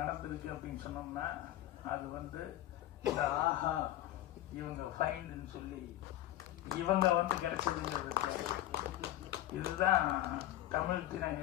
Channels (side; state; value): right; quieter; 14.2 dB